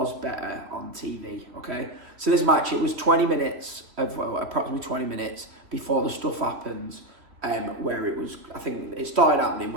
better on TV, okay? So this match, it was 20 minutes, approximately 20 minutes before the stuff happens, where it was, I think it started happening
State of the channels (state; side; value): late; left; 3.2 ms